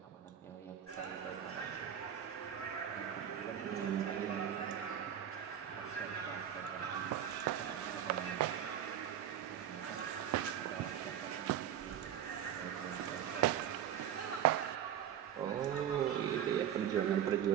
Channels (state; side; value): quieter; left; 9.9 dB